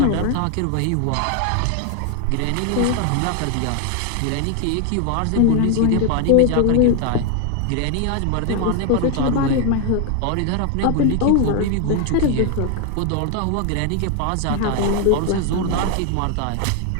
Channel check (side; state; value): both; different; correlation 0.00